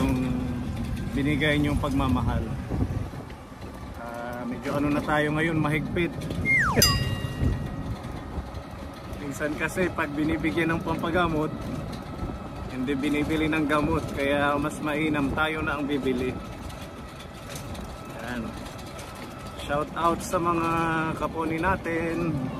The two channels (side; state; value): both; identical; correlation 1.00